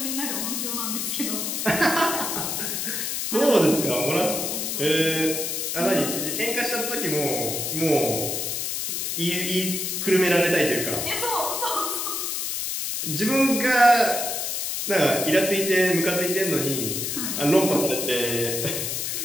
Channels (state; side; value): noise; left; hiss, 2 dB below the sound